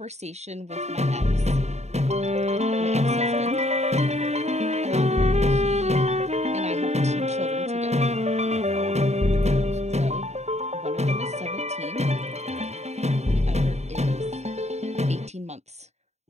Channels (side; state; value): left; late; 0.32 ms